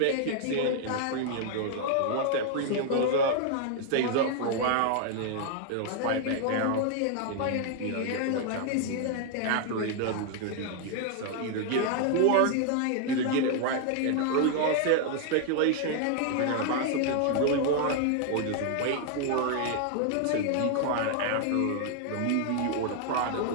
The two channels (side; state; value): both; different; correlation 0.00